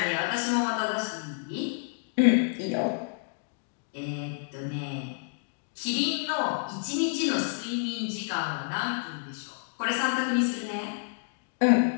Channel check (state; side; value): silent; right; digital silence